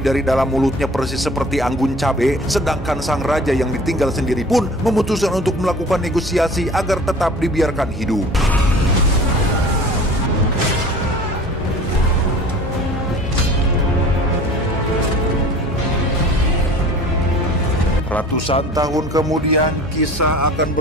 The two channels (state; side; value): normal; both; correlation 0.44